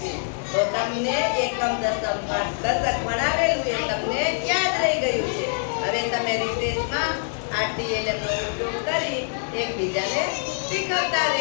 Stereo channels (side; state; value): right; silent; 62 dB below the other